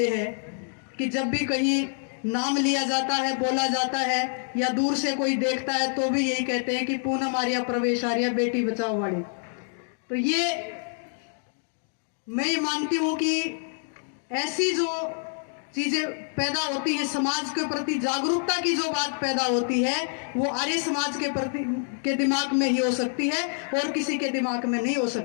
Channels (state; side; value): silent; right; 60 dB below the other